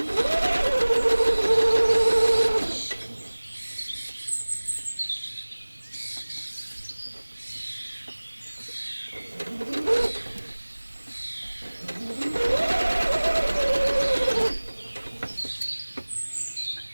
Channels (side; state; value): both; inverted; correlation -1.00